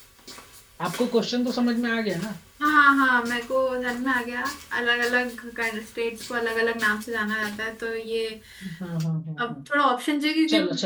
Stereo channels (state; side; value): identical; both; correlation 1.00